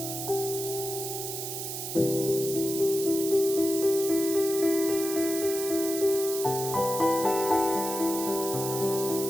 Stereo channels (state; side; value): noise; right; hiss, 6 dB below the sound